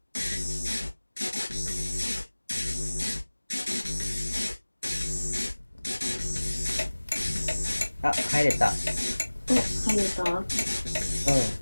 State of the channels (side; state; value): both; inverted; correlation -1.00